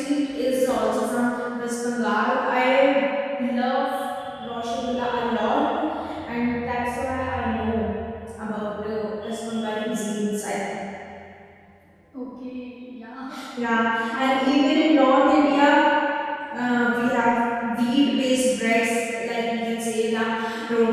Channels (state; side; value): identical; both; correlation 1.00